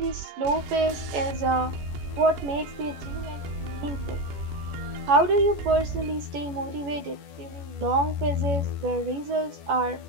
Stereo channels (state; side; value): late; left; 14 ms